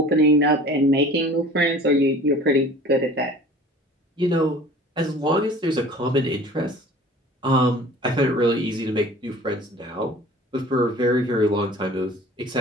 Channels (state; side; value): normal; both; correlation 0.45